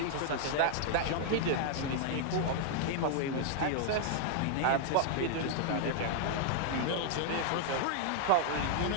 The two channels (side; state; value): both; different; correlation 0.00